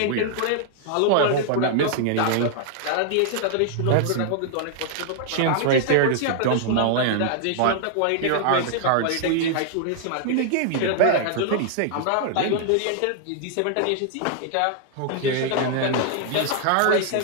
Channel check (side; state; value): both; different; correlation -0.01